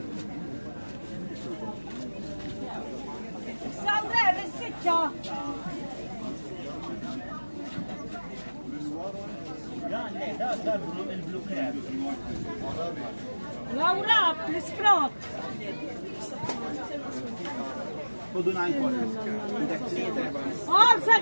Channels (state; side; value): inverted; both; correlation -1.00